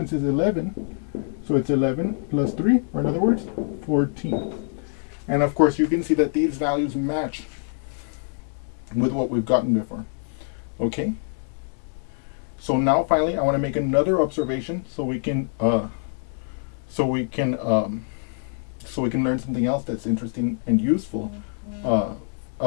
is 11. So it's 11 plus 3, or in other words, 14. And of course, you can see that these values match with what we've gotten before. Okay? So now finally, I want to make another observation so we can learn something else that's interesting and useful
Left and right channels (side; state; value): right; silent; digital silence